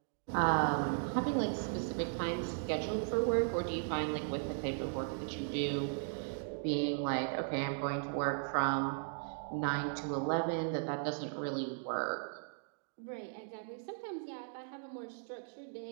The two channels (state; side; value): silent; left; digital silence